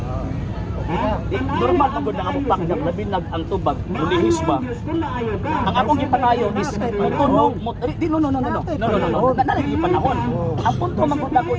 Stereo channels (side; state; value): both; identical; correlation 1.00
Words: Normal na gud na among pakdak labi nag ang tubag ulihis ba. Ang akong gipanayo is tunog mo no. Nanalagi panahon. Ang punto man gud nako